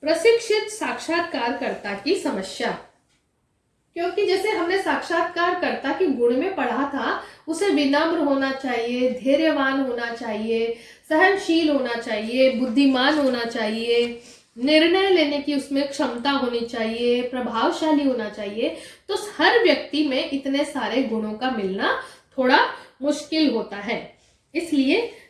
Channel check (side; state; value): both; identical; correlation 1.00